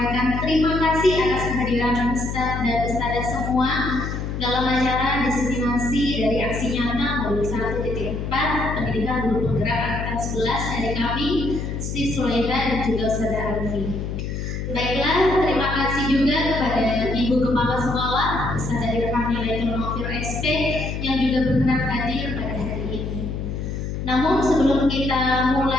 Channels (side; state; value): left; noise; hum, 4 dB below the sound